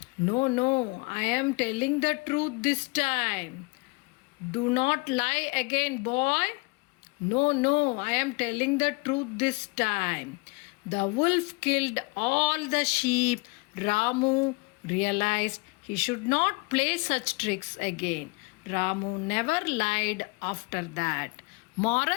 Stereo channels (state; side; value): quieter; right; 28.2 dB